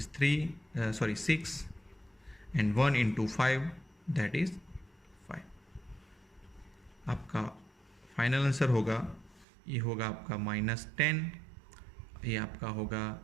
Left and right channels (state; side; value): drops out; left; at 9.5 s